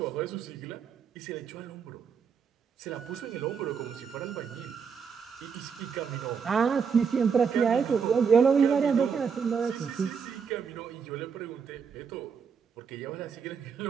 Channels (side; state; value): left; quieter; 6.3 dB